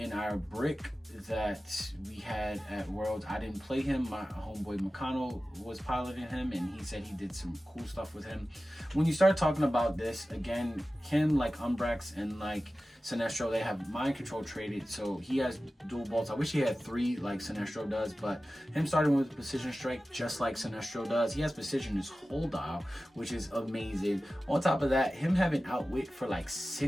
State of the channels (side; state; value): both; normal; correlation 0.95